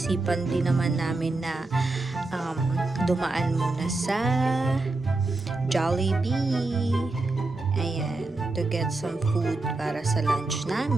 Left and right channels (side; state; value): left; quieter; 3.2 dB